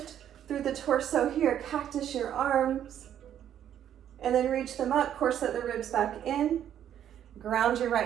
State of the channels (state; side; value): quieter; left; 10.3 dB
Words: through the torso here. Cactus your arms, and then reach them up, corset the ribs back in. Ground your